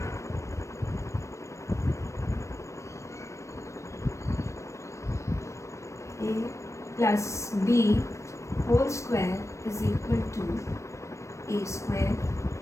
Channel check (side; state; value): right; late; 0.14 ms